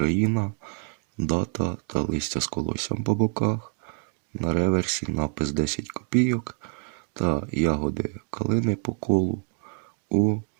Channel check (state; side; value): quieter; left; 37.3 dB